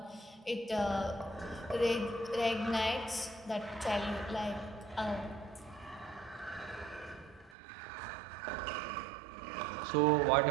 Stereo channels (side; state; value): left; drops out; at 7.6 s